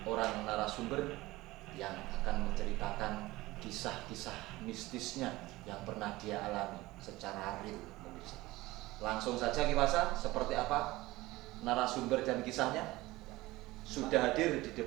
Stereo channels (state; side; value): quieter; left; 19.1 dB